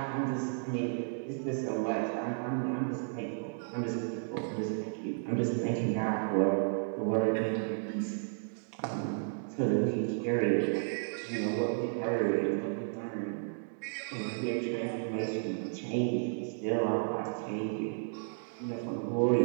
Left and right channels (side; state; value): left; silent; digital silence